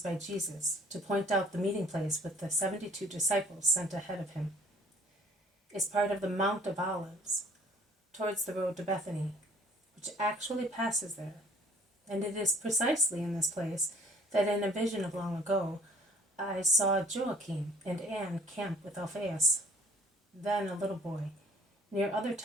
by Jesus to point out the meeting place with the 72 disciples sent ahead of him. It's part of the Mount of Olives, towards the road to Bethany, which actually passes there. And it is precisely in this place that in a vision of long ago I saw Joachim and Anne camp with Alphaeus, then a little boy, near other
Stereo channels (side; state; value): both; normal; correlation 0.55